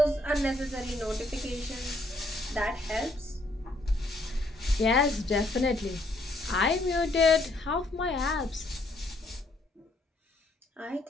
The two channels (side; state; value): both; normal; correlation 0.70